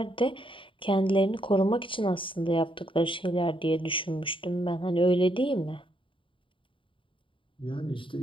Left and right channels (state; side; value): late; right; 0.25 ms